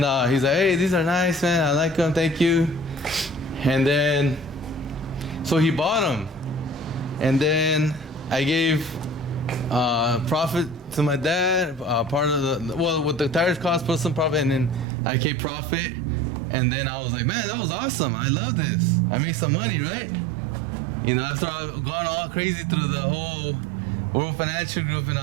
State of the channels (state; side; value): drops out; left; at 14.9 s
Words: he's like, hey, these are nice, man. I like them, thank you. And then, so he bought them. And then I gave profit to my dad, part of the, well, what the tires cost, put some profit, and then I kept profit. And then I was like, man, that was awesome. I love this. I made some money, right? You know, after I've gone all crazy through the whole World Financial Group and